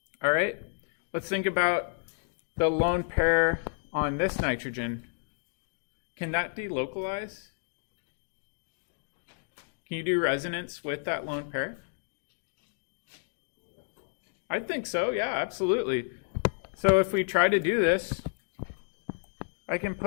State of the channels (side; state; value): right; silent; digital silence